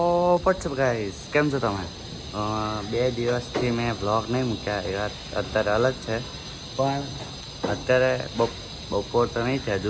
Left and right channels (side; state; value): both; identical; correlation 1.00